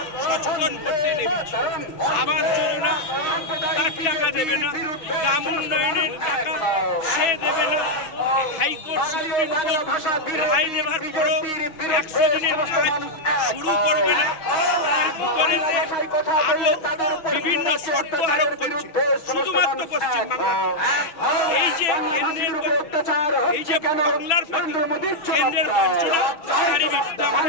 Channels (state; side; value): late; right; 6.1 ms